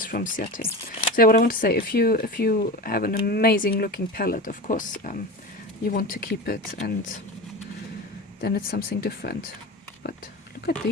from Ciate. So yeah, what I want to say, if you have an amazing looking palette, of course, you want to keep it, and then it's something different. But look at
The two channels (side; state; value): both; normal; correlation 0.27